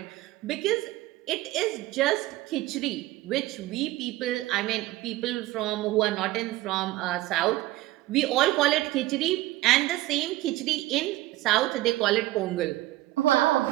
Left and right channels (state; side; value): quieter; left; 17.2 dB